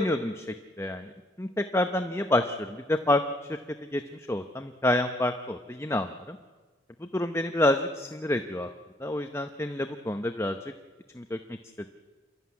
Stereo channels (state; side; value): normal; both; correlation 0.67